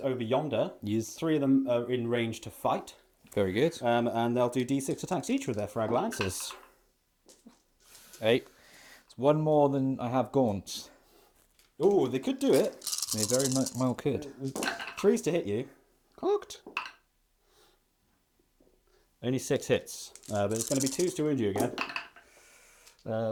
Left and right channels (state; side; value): identical; both; correlation 1.00